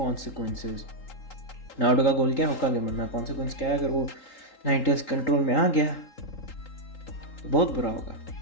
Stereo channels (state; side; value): late; right; 3.8 ms